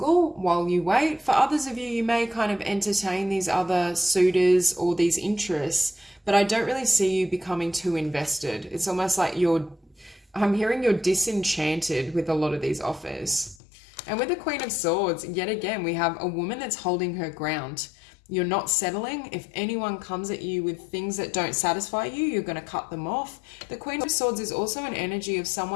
while you wait. For others of you, you may kind of entertain these other suitors or these interests, but I don't really see you becoming too invested. It's almost like I'm hearing you're disenchanted with a lot of these offers. And with the Queen of Swords, yet again, we have a woman that's holding her ground. You're not settling. If anyone comes at you with things that don't satisfy you, you're going to cut them off. The Queen of Swords is also an energy of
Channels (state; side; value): drops out; right; at 13.6 s